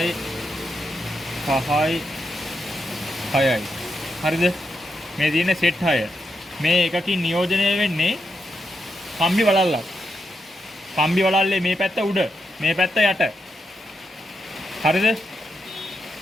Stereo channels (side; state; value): both; normal; correlation 0.83